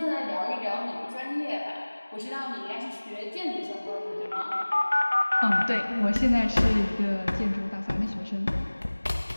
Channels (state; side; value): inverted; both; correlation -1.00